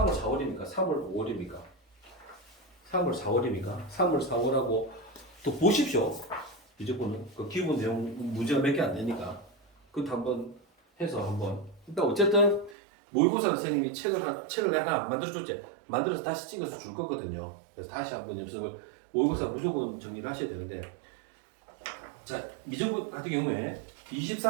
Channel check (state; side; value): drops out; left; at 12.8 s